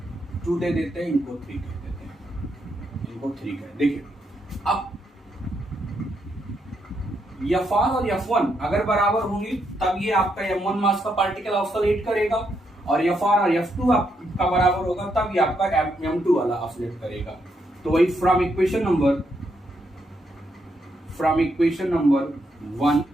2 दे देते हैं, इनको 3 कह देते हैं, इनको 3 कह। देखिए अब Fr और F1 अगर बराबर होंगे तब ये आपका m1 मास का पार्टिकल ऑसिलेट करेगा, और Fr और F2 आपका बराबर होगा तब ये आपका m2 वाला ऑसिलेट करेगा। तो वही फ्रॉम इक्वेशन नंबर 1,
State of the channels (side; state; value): both; normal; correlation 0.79